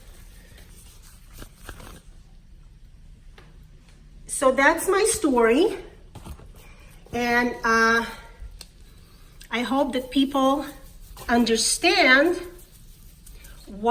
So that's my story, and I hope that people understand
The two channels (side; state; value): both; identical; correlation 1.00